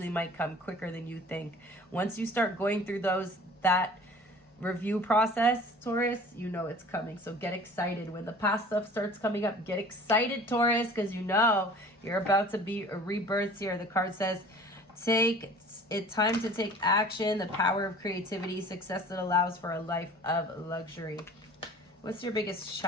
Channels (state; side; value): normal; both; correlation 0.46